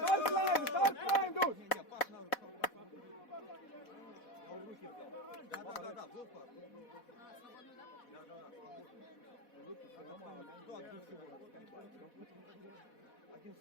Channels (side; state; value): right; late; 4.1 ms